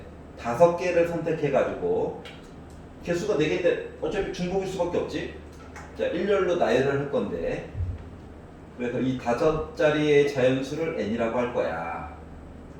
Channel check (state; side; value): identical; both; correlation 1.00